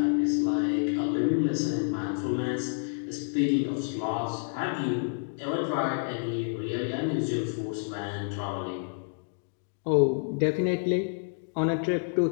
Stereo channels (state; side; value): silent; right; digital silence